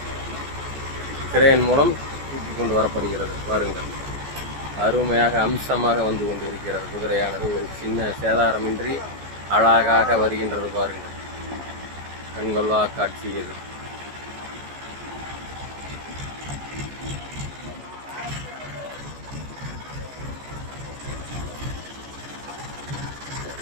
கிரேன் மூலம் தூக்கி கொண்டு வரப்படுகிறது. பாருங்கள், அருமையாக அம்சமாக வந்து கொண்டு இருக்கிறது. குதிரையானது ஒரு சின்ன சேதாரமின்றி அழகாக வருகின்றது. பாருங்கள், கண்கொள்ளா காட்சி இது.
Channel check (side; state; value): left; late; 14 ms